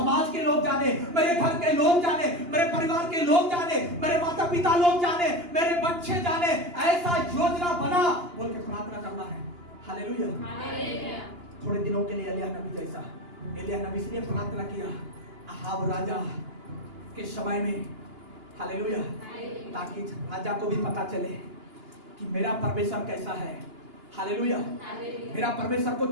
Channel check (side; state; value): left; late; 2.9 ms